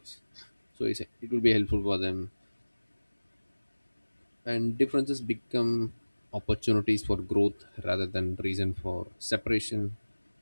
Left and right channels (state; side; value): inverted; both; correlation -1.00